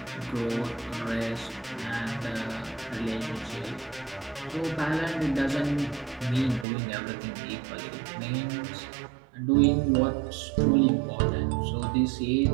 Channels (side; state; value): left; drops out; at 6.7 s